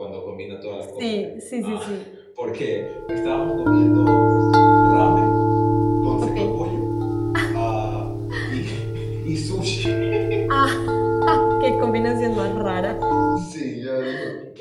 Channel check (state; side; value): identical; both; correlation 1.00